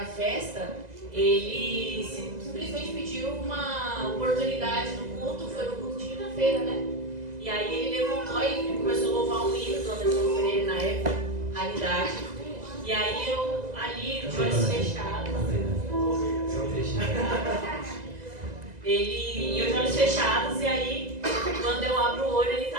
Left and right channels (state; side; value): late; left; 2.0 ms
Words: festa, ele simplesmente pediu uma oportunidade no culto, foi no culto de quinta-feira, né? E aí ele levantou e começou a louvar um hino do Anderson Pereira na época, Raridade. E aí eu ali, de olhos fechados. E eu de olhos fechados, e aí quando eu abro o olho ele